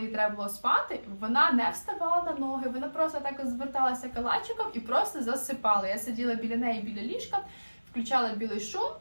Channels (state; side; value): inverted; both; correlation -1.00